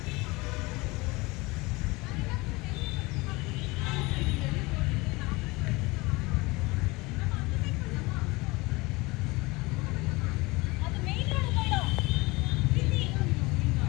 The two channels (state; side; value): quieter; right; 23.6 dB